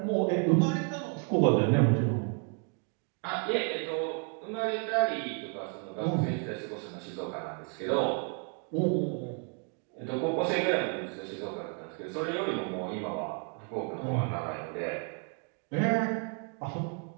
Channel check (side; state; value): left; quieter; 38.2 dB